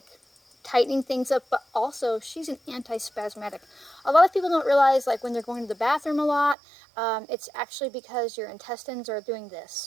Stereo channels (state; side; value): drops out; left; at 6.6 s